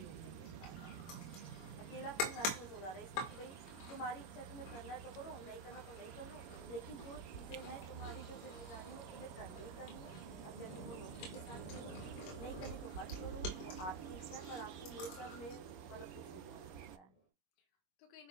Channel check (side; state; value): right; late; 21 ms